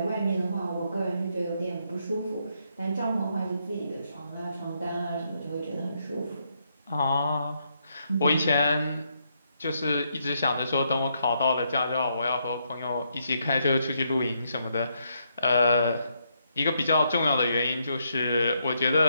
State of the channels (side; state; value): both; inverted; correlation -0.77